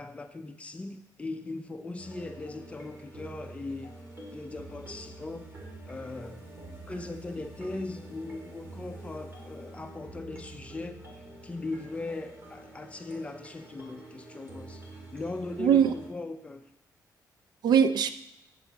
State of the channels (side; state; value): left; quieter; 4.4 dB